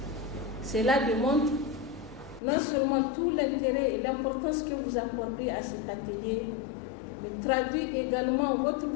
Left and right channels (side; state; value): right; drops out; at 2.4 s